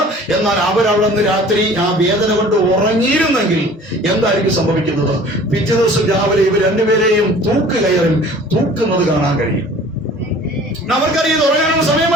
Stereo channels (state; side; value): normal; both; correlation 0.47